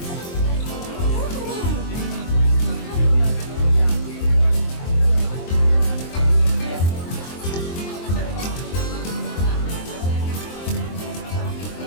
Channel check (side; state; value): right; late; 23 ms